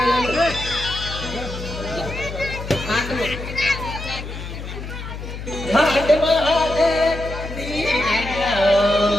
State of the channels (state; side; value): noise; left; hum, 9 dB below the sound